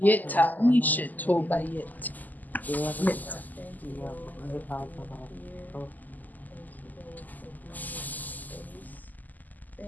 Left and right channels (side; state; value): right; late; 0.083 ms